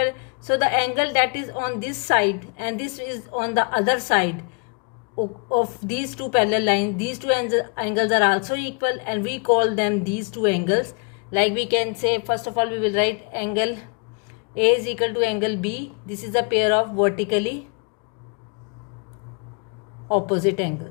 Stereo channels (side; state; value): right; quieter; 36.6 dB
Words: So the angle that is on this side and this is on the other side of these two parallel lines, these two angles are also equal, and we call them these two angles. Like we can say, first of all we will write angle A is equal to angle B. This is a pair of vertically opposite